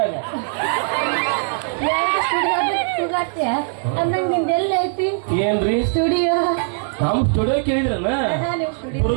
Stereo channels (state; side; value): silent; left; digital silence